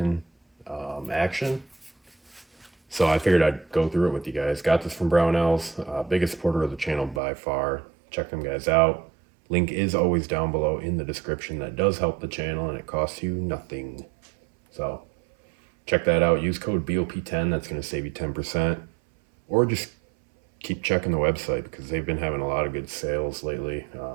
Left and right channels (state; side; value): drops out; left; at 7.2 s